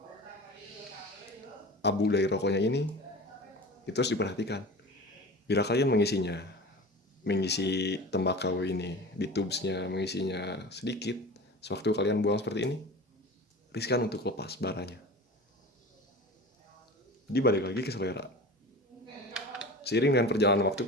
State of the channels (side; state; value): both; normal; correlation 0.35